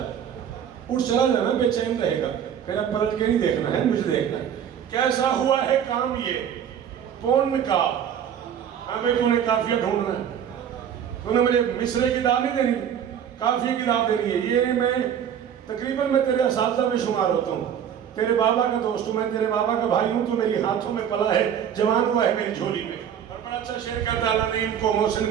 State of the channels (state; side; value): quieter; left; 8.9 dB